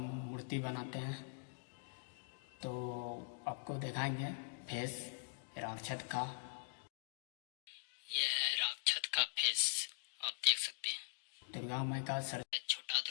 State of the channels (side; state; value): right; silent; digital silence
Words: मूर्ति बनाते हैं, तो आपको दिखाएंगे फेस राक्षस का। यह है राक्षस का फेस, आप देख सकते हैं। दुर्गा माँ का सर, छोटा